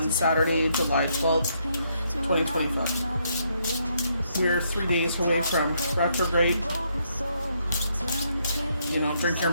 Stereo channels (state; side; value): inverted; both; correlation -0.74